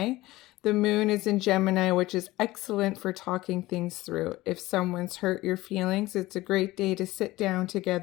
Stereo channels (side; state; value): right; quieter; 18.2 dB